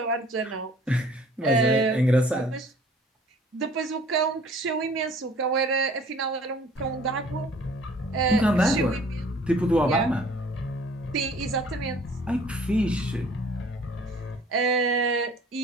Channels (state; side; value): normal; both; correlation 0.53